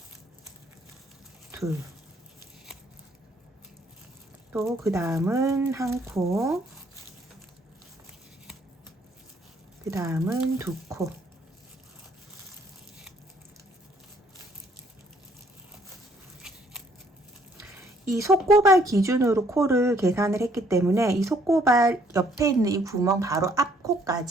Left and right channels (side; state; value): both; normal; correlation 0.65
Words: 둘, 또 그 다음은 한 코, 그 다음은 2코. 이 속고발 기준으로 코를 계산을 했기 때문에 이 속고발 옆에 있는 이 구멍 바로 앞